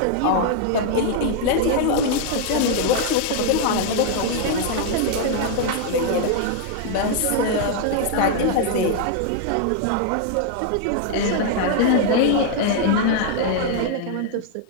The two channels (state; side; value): different; both; correlation 0.00